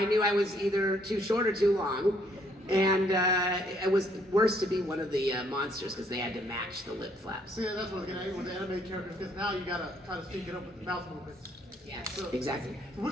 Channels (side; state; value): both; normal; correlation 0.68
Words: knew I was either too short or too long. And it was worse to be one of the monsters because they had to match the lip flaps. See, that's what I was getting at with the anime characters, because now you gotta try to sync it up with the mouth movements. Yes, So, exactly.